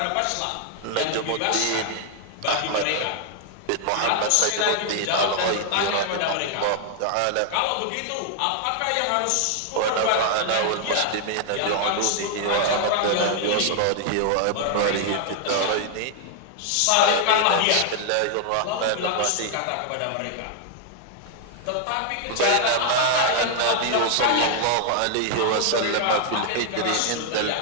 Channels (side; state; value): both; different; correlation 0.00